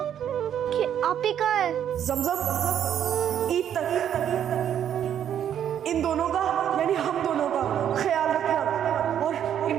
कि आप ही कहाँ है? जमजम, ईद तक इन दोनों का यानी हम दोनों का ख्याल रखना और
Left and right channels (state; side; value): quieter; left; 9.7 dB